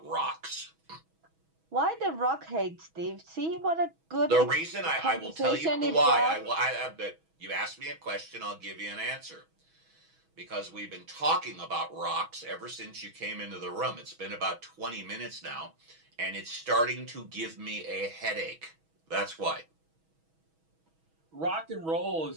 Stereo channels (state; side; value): late; left; 6.2 ms